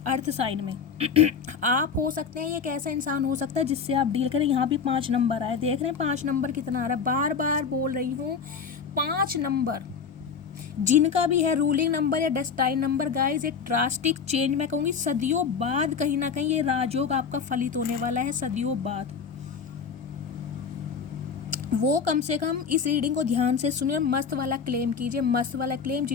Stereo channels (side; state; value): right; quieter; 6.1 dB